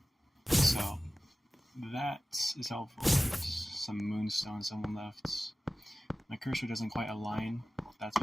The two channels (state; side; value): normal; both; correlation 0.96